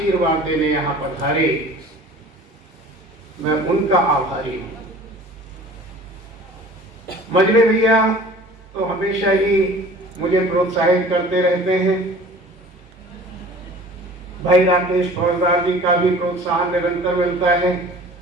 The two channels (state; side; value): normal; both; correlation 0.45